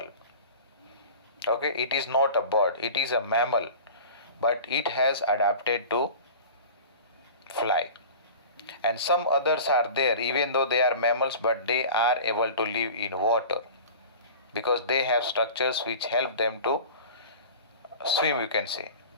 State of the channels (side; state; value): both; inverted; correlation -0.38